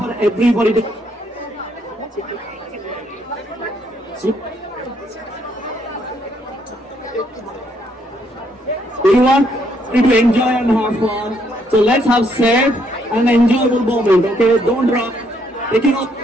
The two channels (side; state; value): both; normal; correlation 0.72